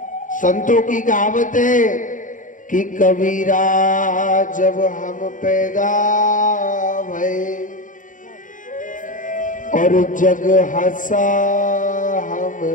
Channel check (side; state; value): right; late; 0.38 ms